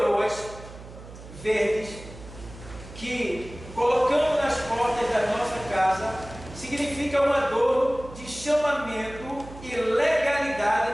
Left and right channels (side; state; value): right; noise; hum, 16 dB below the sound